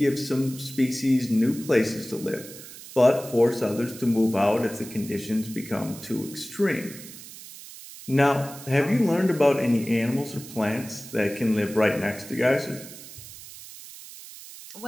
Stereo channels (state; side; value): noise; right; hiss, 15 dB below the sound